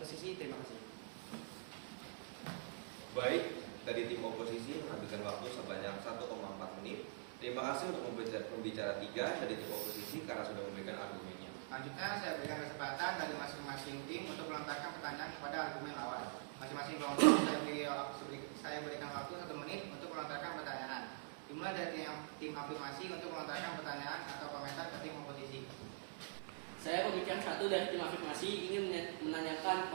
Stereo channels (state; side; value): silent; left; digital silence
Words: terima kasih. Baik, dari tim oposisi menghabiskan waktu sebanyak 1,4 menit. Terima kasih untuk pembicara 3 dari tim oposisi karena sudah memberikan argumennya. Selanjutnya saya berikan kesempatan dari masing-masing tim untuk melontarkan pertanyaan kepada argumen lawan. Masing-masing kelompok saya berikan waktu 1 menit untuk melontarkan pertanyaan. Dimulai dari tim afirmasi untuk melontarkan pertanyaan atau komentar ke tim oposisi. Saya pembicara 1 dari tim afirmasi ingin menanyakan